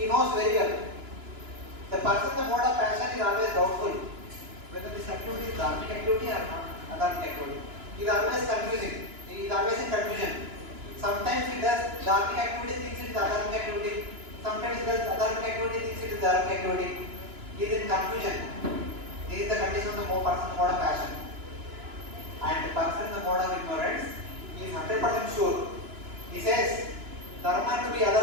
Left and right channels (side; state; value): left; late; 2.9 ms